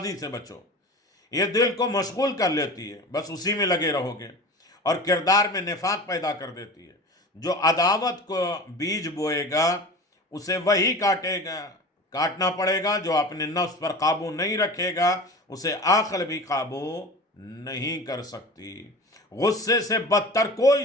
سے بچو، یہ دل کو مشغول کر لیتی ہے، بس اسی میں لگے رہو گے، اور کردار میں نفاق پیدا کر دیتی ہے۔ جو عداوت کو بیج بوئے گا اسے وہی کاٹنا پڑے گا، جو اپنے نفس پر قابو نہیں رکھے گا اسے عقل بھی قابو نہیں کر سکتی۔ غصے سے بدتر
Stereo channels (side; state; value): both; normal; correlation 0.35